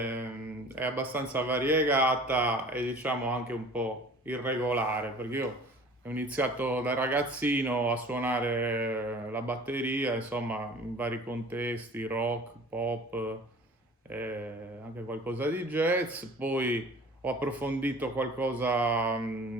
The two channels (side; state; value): both; normal; correlation 0.45